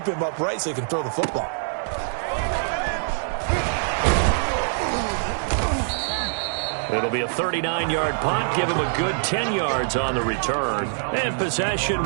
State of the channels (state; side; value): silent; left; digital silence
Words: him upright so he can throw the football. It'll be a 39-yard punt. Give him a good 10 yards on the return. And possession